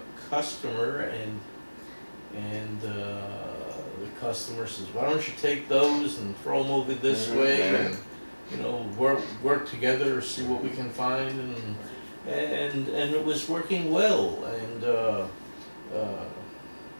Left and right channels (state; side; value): inverted; both; correlation -1.00